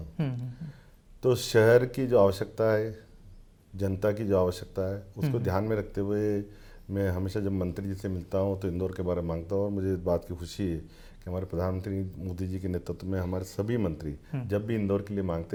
तो शहर की जो आवश्यकता है, जनता की जो आवश्यकता है, उसको ध्यान में रखते हुए मैं हमेशा जब मंत्री जी से मिलता हूँ तो इंदौर के बारे में मांगता हूँ। और मुझे इस बात की खुशी है कि हमारे प्रधानमंत्री मोदी जी के नेतृत्व में हमारे सभी मंत्री जब भी इंदौर के लिए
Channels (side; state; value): both; identical; correlation 1.00